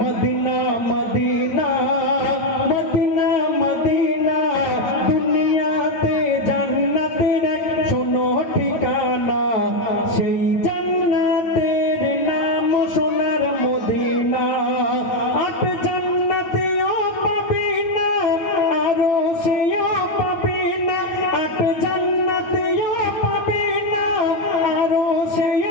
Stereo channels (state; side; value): late; right; 9.0 ms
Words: Medina Medina Medina Medina দুনিয়াতে জান্নাতের এক শোনো ঠিকানা সেই জান্নাতের নাম সোনার মদিনা আট জান্নাতেও পাবি না আরো সেও পাবি না আট জান্নাতেও পাবি না আরো